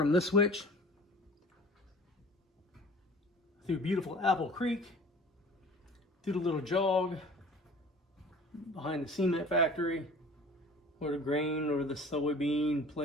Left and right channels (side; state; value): both; normal; correlation 0.45